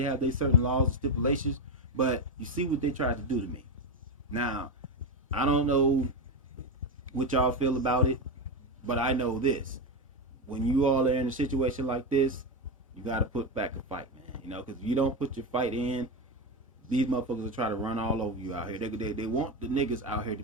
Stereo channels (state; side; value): normal; both; correlation 0.13